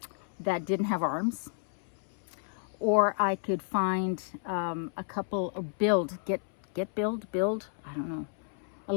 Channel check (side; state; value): right; silent; 57 dB below the other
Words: that didn't have arms, or I could find a couple, or build, I don't know, a